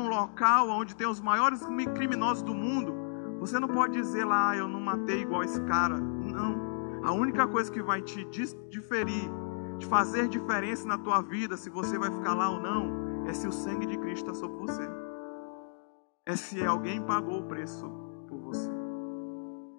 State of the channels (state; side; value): silent; right; digital silence